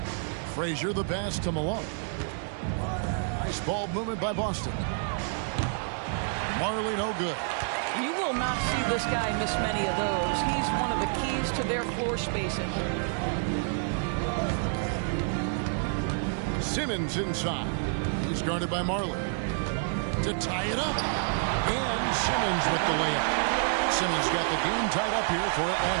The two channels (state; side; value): silent; left; 59 dB below the other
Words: Frazier the pass to Malone. Nice ball movement by Boston. Marley no good. You will not see this guy miss many of those. He's one of the keys to their floor spacing. Simmons inside. He's guarded by Marley. To tie it up. And Simmons with the layup. Simmons got the game tied up here for